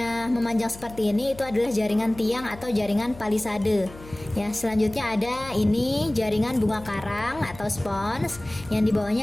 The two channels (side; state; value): left; noise; hum, 18 dB below the sound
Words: memanjang seperti ini itu adalah jaringan tiang atau jaringan palisade. Ya, selanjutnya ada ini jaringan bunga karang atau spons, yang di